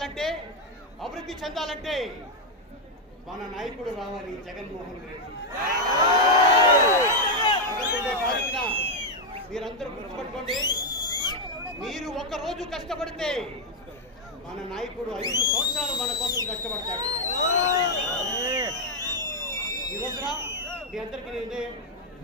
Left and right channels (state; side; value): normal; both; correlation 0.01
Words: అభివృద్ధి చెందాలంటే మన నాయకుడు రావాలి, జగన్మోహన్ రెడ్డి. తారీఖున మీరందరూ గుర్తుపెట్టుకోండి, మీరు ఒక రోజు కష్టపడితే మన నాయకుడు 5 సంవత్సరాలు మన కోసం కష్టపడతాడు. ఈ రోజున మీ అందరికీ నేను